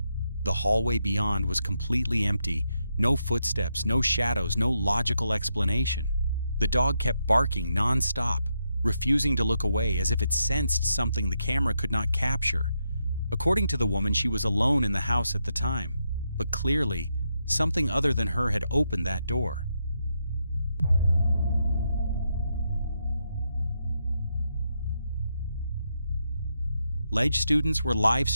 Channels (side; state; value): both; inverted; correlation -0.82